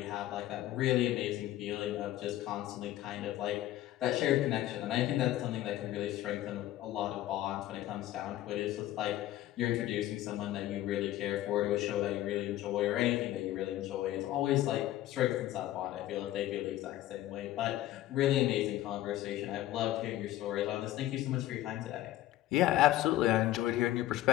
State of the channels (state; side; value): quieter; right; 14.3 dB